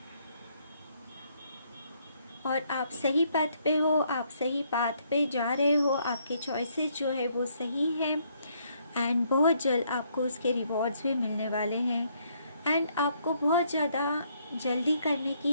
और आप सही पथ पे हो, आप सही पाथ पे जा रहे हो, आपके चॉइसेस जो है वो सही है, एंड बहुत जल्द आपको उसके रिवॉर्ड्स भी मिलने वाले हैं। एंड आपको बहुत ज़्यादा जल्दी करने की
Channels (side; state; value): both; inverted; correlation -0.70